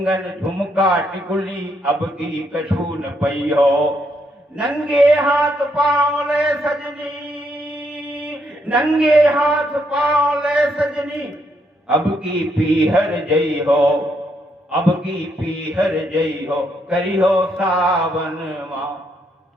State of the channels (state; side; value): normal; both; correlation 0.75